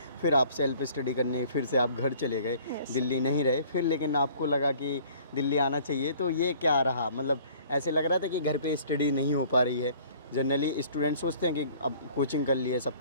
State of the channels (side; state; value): both; inverted; correlation -0.53